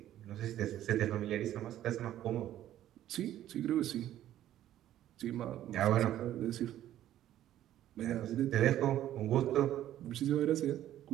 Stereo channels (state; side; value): quieter; left; 12.5 dB